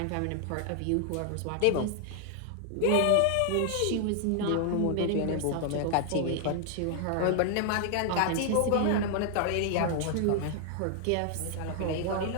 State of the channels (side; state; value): both; different; correlation 0.00